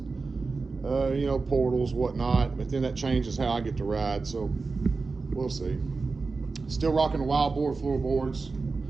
know, portals, whatnot, but then that changes how I get to ride, so we'll see. Still rocking the wild board floorboards.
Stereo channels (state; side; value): quieter; left; 4.1 dB